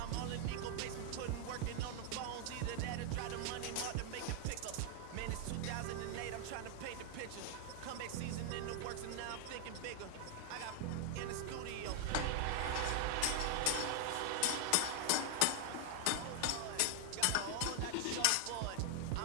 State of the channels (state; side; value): different; both; correlation 0.00